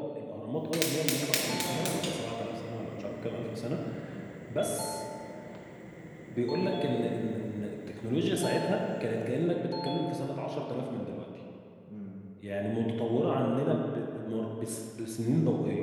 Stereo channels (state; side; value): identical; both; correlation 1.00